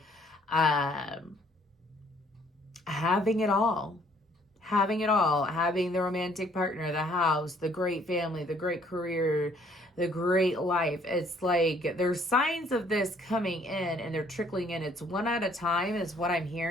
having it all. Having it all. Having the romantic partner, the house, the great family, the great career, the great life. It's like there's signs of this coming in and they're trickling in. It's one at a time is what I'm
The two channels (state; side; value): normal; both; correlation 0.62